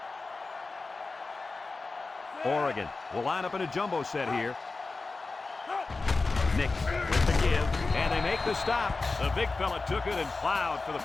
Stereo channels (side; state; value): right; quieter; 3.8 dB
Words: Oregon will line up in a jumbo set here. Nix with the give, and they make the stop. The big fella took it and plowed for the